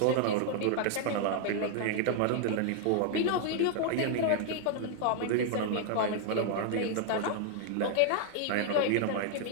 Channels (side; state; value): both; different; correlation 0.00